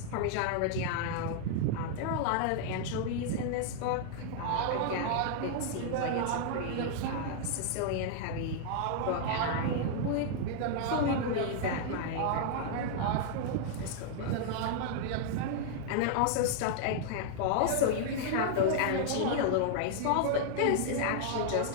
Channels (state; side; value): different; both; correlation 0.00